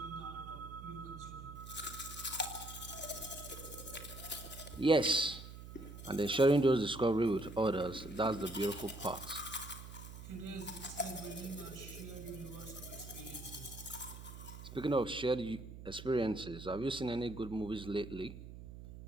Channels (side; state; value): right; noise; hum, 12 dB below the sound